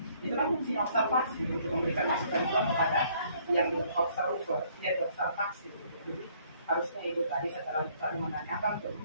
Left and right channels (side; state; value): both; inverted; correlation -0.63